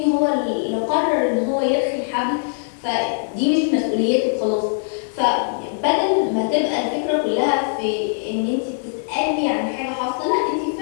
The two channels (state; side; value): silent; right; 65 dB below the other